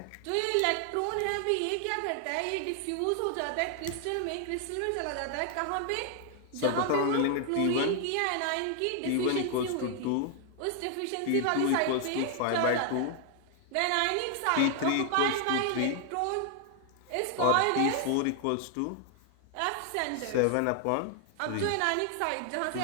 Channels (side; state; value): both; different; correlation 0.00